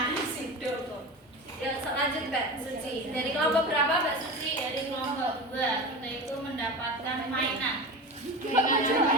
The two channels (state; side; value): normal; both; correlation 0.27